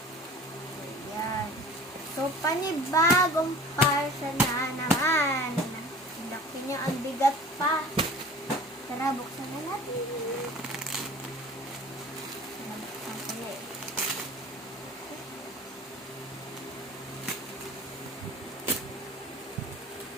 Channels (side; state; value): both; normal; correlation 0.43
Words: Ayan. So, panibagong parcel na naman. Laki niya, ang bigat pa. Tara, buksan na natin. Buksan ko na eh.